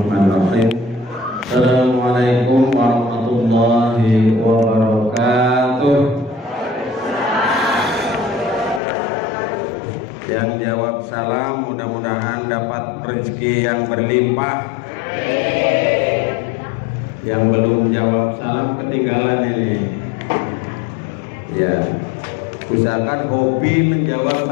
Assalamualaikum warahmatullahi wabarakatuh. Yang jawab salam mudah-mudahan dapat rezeki yang berlimpah. Yang belum jawab salam ketinggalan ini. Ya, usahakan hobi menjawab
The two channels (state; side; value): drops out; right; at 8.8 s